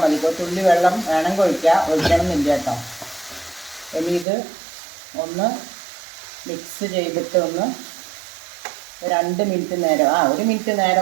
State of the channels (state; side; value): drops out; left; at 4.2 s